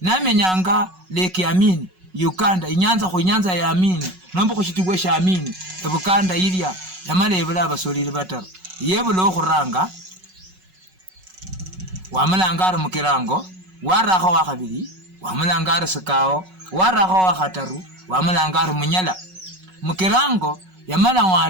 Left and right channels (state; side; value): late; left; 5.4 ms